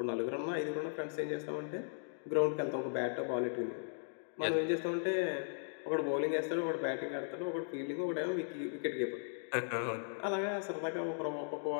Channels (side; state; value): right; silent; digital silence